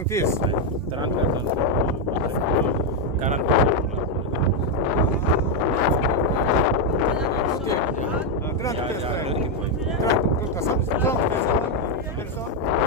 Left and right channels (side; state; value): both; normal; correlation 0.02